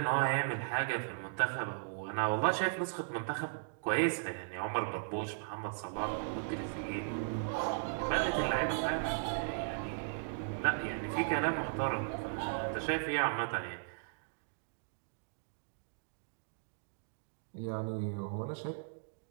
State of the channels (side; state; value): left; silent; digital silence